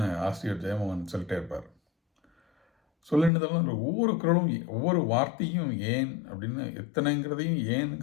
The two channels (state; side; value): drops out; right; at 3.3 s